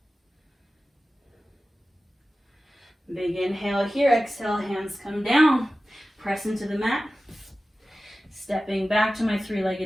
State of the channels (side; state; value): both; normal; correlation 0.95